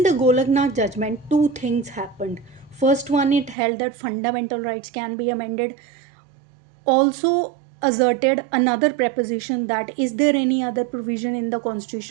the Golaknath judgment, two things happened. First one, it held that fundamental rights can be amended. Also asserted another preposition, that is there any other provision in the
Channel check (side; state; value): left; drops out; at 3.6 s